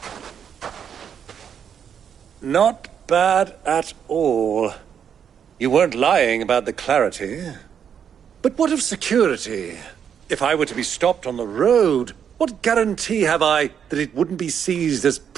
Not bad at all. You weren't lying about the clarity. But what of security? If I were to be stopped on the road, what guarantee have I that it wouldn't be seized as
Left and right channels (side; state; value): left; quieter; 8.0 dB